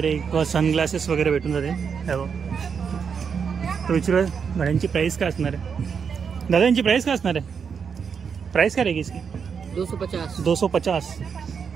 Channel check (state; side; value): quieter; left; 6.5 dB